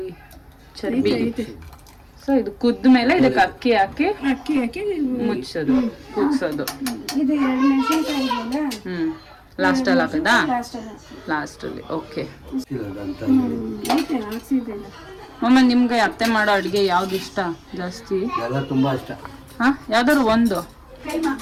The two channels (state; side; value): identical; both; correlation 1.00